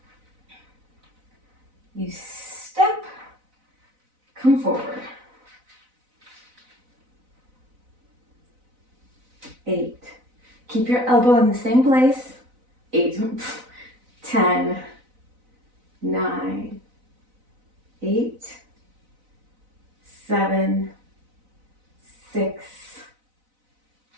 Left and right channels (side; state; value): left; late; 4.0 ms